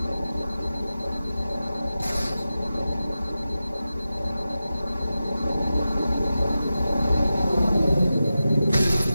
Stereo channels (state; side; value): inverted; both; correlation -0.93